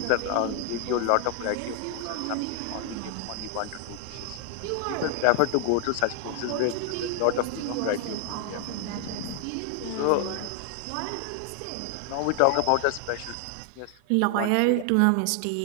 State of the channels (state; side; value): different; both; correlation 0.00